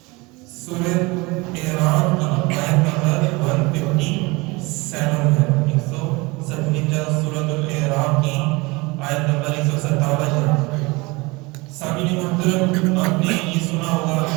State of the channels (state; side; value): quieter; left; 24.7 dB